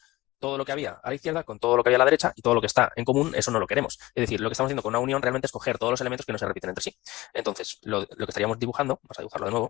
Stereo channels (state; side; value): quieter; right; 19.0 dB